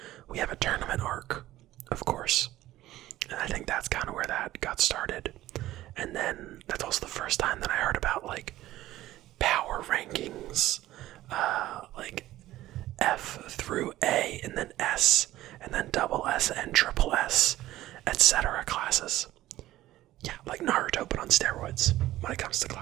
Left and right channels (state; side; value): quieter; left; 15.3 dB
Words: we have a tournament arc, of course. And I think that's kind of where that got started. And then that's also the first time that I heard about, like, power rankings, like F through A, and then S, and then double S and triple S, etc. classes. Yeah, like Naruto, but on steroids when it comes to